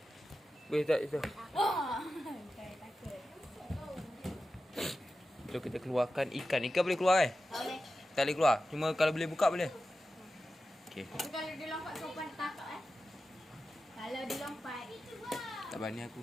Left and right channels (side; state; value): both; normal; correlation 0.93